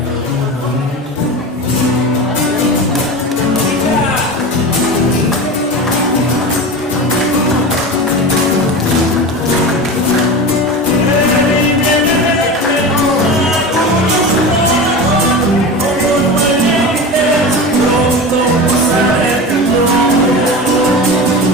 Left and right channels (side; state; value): both; normal; correlation 0.28